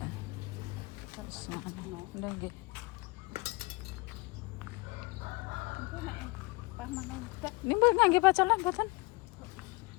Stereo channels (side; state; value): right; quieter; 26.1 dB